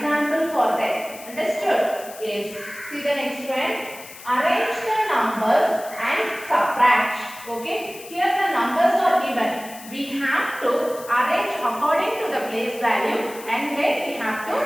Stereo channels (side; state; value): left; noise; hiss, 16 dB below the sound